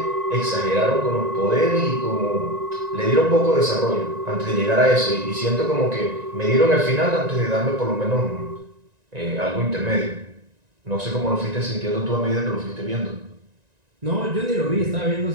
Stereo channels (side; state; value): left; late; 1.9 ms